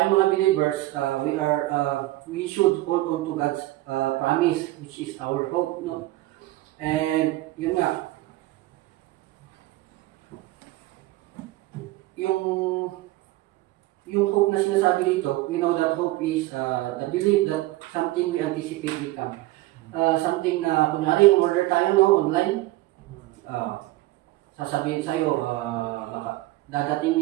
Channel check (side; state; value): left; quieter; 18.1 dB